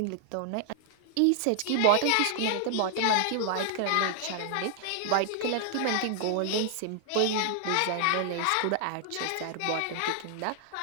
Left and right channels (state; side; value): different; both; correlation -0.01